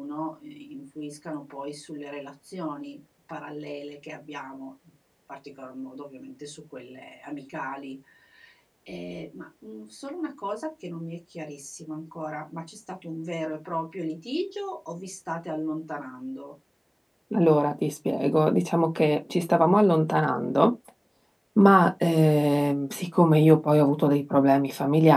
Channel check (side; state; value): both; identical; correlation 1.00